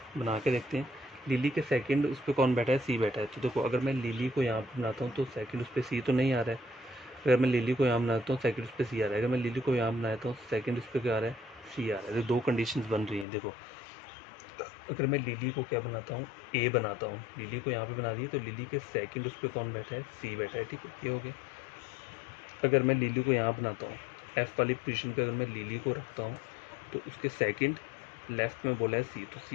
बना के देखते हैं। लिली के सेकंड उस पर कौन बैठा है, सी बैठा है। तो देखो अगर मैं लिली को यहाँ पे बनाता हूँ तो सेकंड उस पर सी तो नहीं आ रहा है। अगर मैं लिली को यहाँ बनाता हूँ सेकंड उस पर सी आ रहा है। अगर मैं लिली को यहाँ बनाता हूँ सेकंड उस पर क्या आ रहा है, सी आ रहा है। तो दो कंडीशंस बन रही हैं। देखो अगर मैं लिली को क्या बनाता हूँ, ए बनाता हूँ, लिली को यहाँ पे बना दी, तो लिली के सेकंड उस पर कौन बैठा है, सी बैठा है, ठीक है, ये हो गया। अगर मैं लिली को यहाँ बनाता हूँ, एफ वाली पोजीशन पे अगर मैं लिली को रखता हूँ, तो उसके सेकंड लेफ्ट में बोला है सी, तो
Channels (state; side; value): drops out; right; at 13.2 s